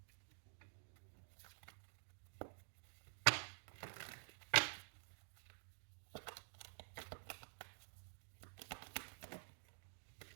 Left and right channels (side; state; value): left; silent; digital silence